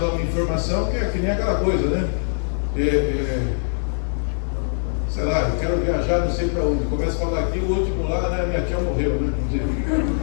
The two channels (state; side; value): silent; right; digital silence